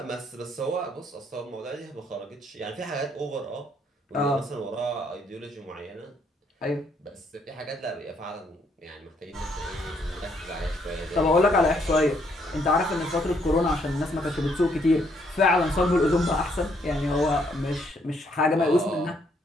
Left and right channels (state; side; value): normal; both; correlation 0.70